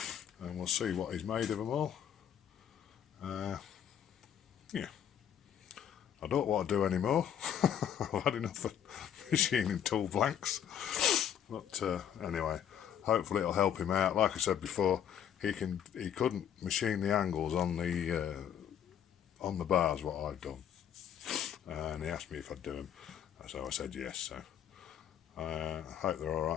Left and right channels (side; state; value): right; quieter; 9.4 dB